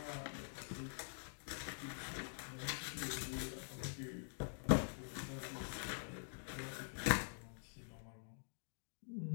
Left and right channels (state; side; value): silent; right; digital silence